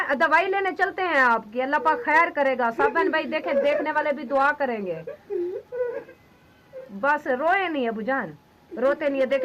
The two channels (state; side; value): identical; both; correlation 1.00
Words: दवाई लेने चलते हैं आपकी, अल्लाह पाक खैर करेगा। सब बहन भाई देखे, देखने वाले भी दुआ करेंगे। बस रोए नहीं अबू जान, रोते नहीं है।